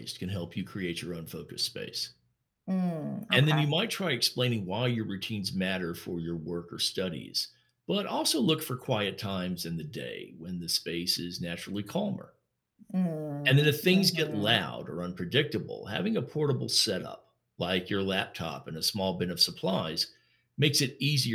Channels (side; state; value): both; identical; correlation 1.00